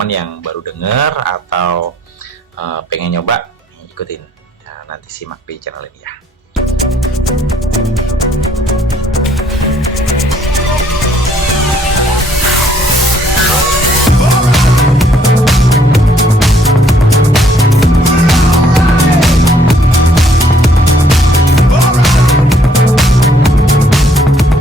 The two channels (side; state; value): both; normal; correlation 0.65